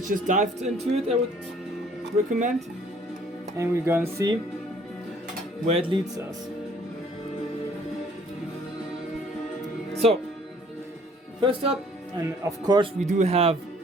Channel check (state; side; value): normal; both; correlation 0.58